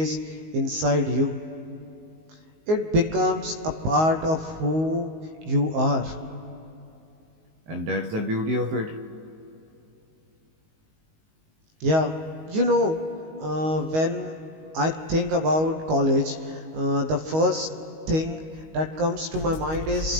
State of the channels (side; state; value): left; late; 19 ms